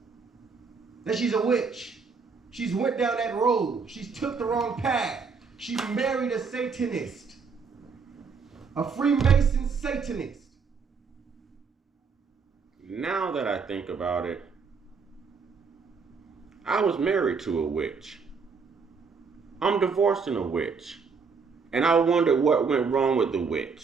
That she's a witch. She's went down that road. She's took the wrong path. She married a Satanist. A Freemason Satanist. Now that I think about it, I was married to a witch. I'm divorcing a witch. And I wondered what went wrong with the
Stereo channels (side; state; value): left; quieter; 5.2 dB